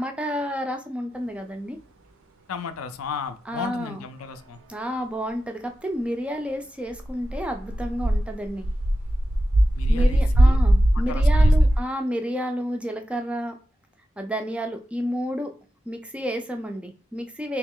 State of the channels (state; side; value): normal; both; correlation 0.91